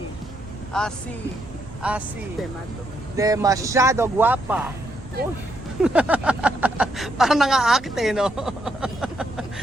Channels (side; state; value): right; noise; rumble, 18 dB below the sound